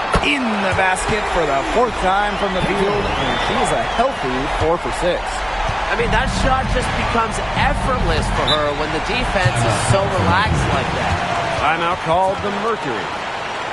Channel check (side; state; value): both; identical; correlation 1.00